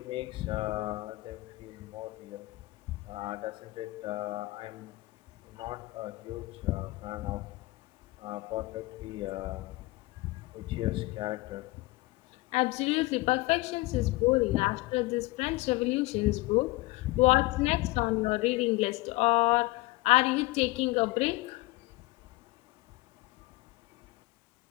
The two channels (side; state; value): right; quieter; 21.0 dB